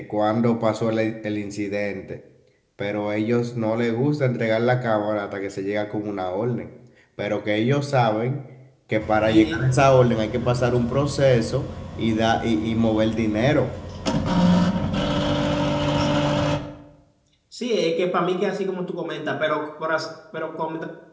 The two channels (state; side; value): identical; both; correlation 1.00